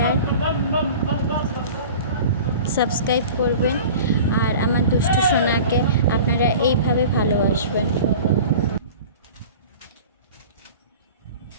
সাবস্ক্রাইব করবেন আর আমার দুষ্টু সোনাকে আপনারা এইভাবে ভালোবাসবেন।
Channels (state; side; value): inverted; both; correlation -0.40